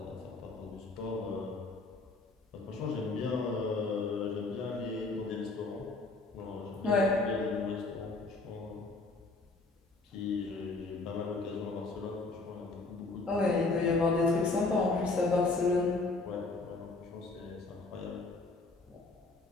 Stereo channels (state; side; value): quieter; right; 3.5 dB